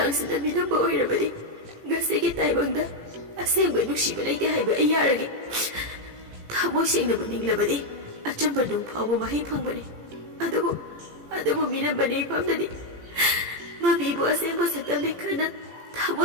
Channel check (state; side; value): late; left; 18 ms